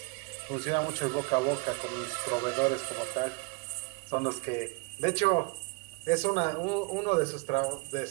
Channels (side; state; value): left; quieter; 29.8 dB